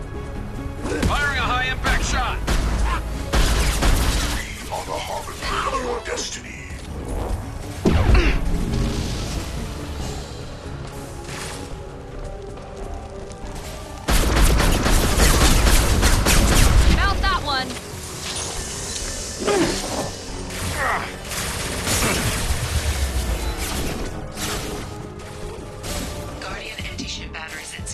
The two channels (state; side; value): identical; both; correlation 1.00